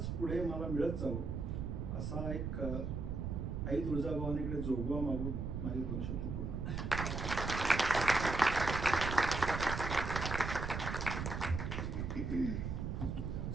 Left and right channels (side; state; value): right; noise; rumble, 3 dB below the sound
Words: पुढे मला मिळत जावं असा एक आई तुळजाभवानीकडे जोगवा मागून माझे 2 शब्द पूर्ण.